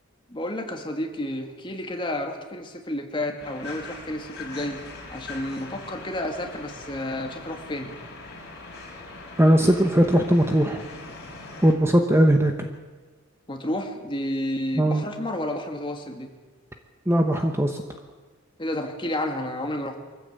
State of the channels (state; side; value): normal; both; correlation 0.82